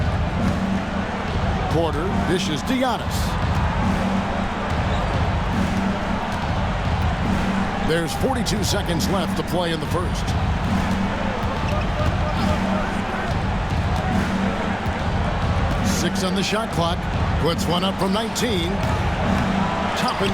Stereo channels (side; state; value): both; identical; correlation 1.00